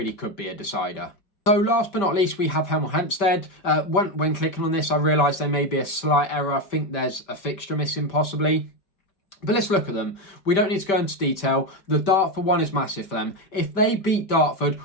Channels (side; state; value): right; late; 5.1 ms